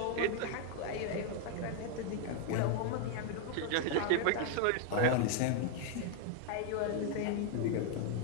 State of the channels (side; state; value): both; different; correlation 0.00